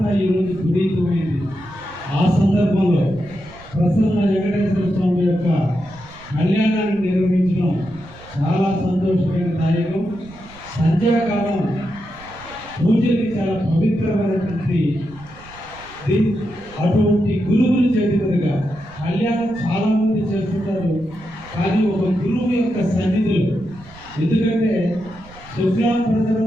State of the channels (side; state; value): right; noise; rumble, 21 dB below the sound